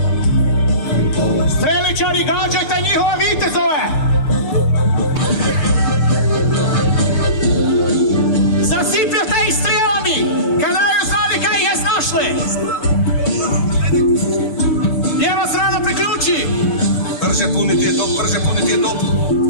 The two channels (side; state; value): right; late; 6.8 ms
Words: Streličari, gađajte njihove vitezove! Zasipljate ih strijelami! Kada ju znali kaj ih je snašle! Lijeva strana priključi! Brže puniti je top, brže puniti je top.